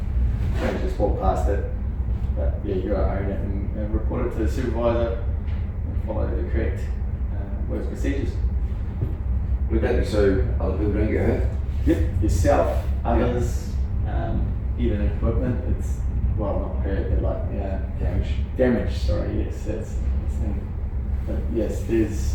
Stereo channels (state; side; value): identical; both; correlation 1.00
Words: don't just walk past it, but yeah, you gotta own it and report it to the supervisor and follow the correct work procedures. Would that be so other people don't get hurt? Yep, yourself, others, even equipment. It's not hurt, but damage. Sorry, yes, that's the thing. But yes, there's